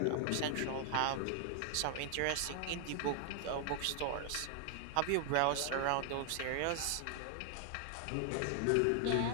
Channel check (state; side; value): different; both; correlation 0.00